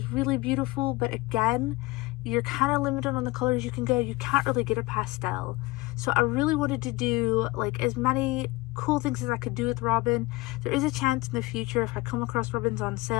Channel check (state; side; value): quieter; right; 21.8 dB